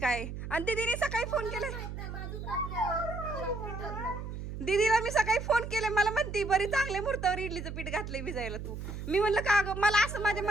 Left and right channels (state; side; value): noise; right; hum, 7 dB below the sound